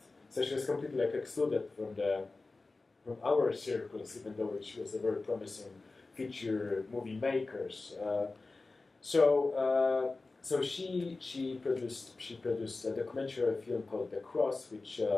So she was completely excluded from our circles, even though she was a very promising feature movie maker. So she produced a documentary film called The Cross, which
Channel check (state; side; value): quieter; right; 3.5 dB